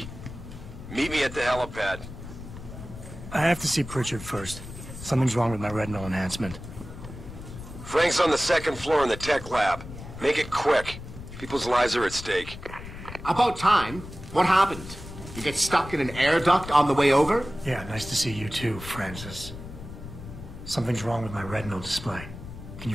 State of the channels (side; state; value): left; noise; rumble, 12 dB below the sound